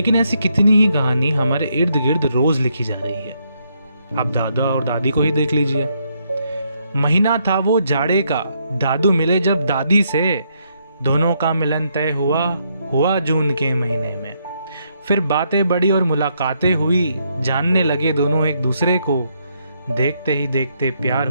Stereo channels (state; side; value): inverted; both; correlation -0.75